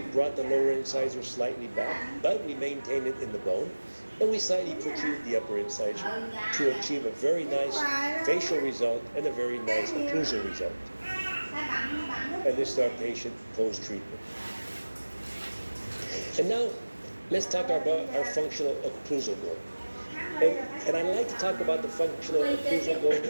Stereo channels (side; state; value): both; inverted; correlation -1.00